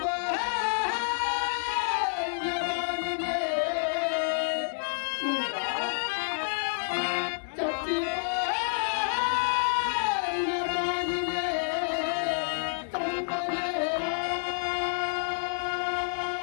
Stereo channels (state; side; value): silent; right; 59 dB below the other